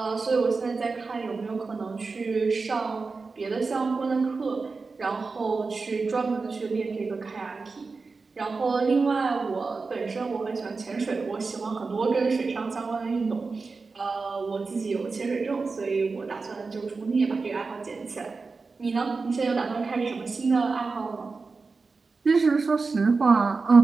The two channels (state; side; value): quieter; left; 4.3 dB